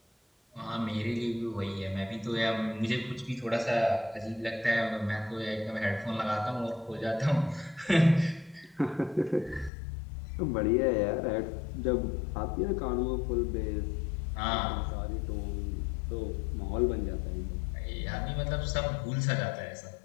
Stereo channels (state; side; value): drops out; right; at 9.7 s